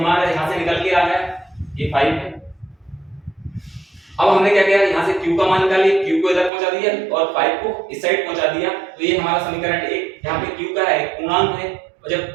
यहां से निकल के आ गया, ये 5 है। अब हमने क्या किया, यहाँ से q का मान निकालिए, q को इधर पहुंचा दिया और 5 को इस साइड पहुंचा दिया, तो ये हमारा समीकरण 1। यहाँ पे q का है, एक पूर्णांक है, और जब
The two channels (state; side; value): drops out; left; at 6.5 s